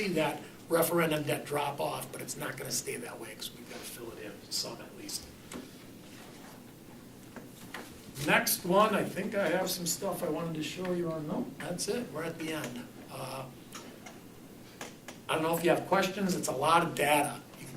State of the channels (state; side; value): identical; both; correlation 1.00